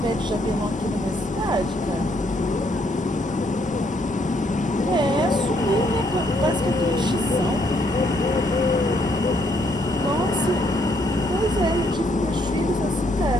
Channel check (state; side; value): normal; both; correlation 0.71